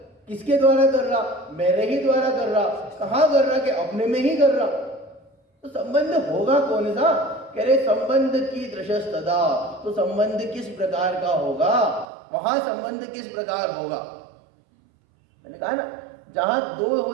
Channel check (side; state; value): left; drops out; at 12.1 s